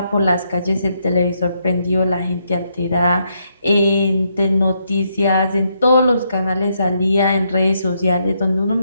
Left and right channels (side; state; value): both; inverted; correlation -0.77